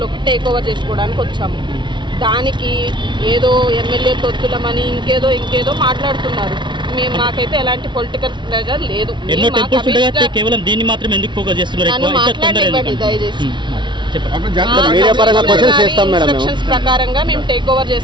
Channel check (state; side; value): late; left; 0.23 ms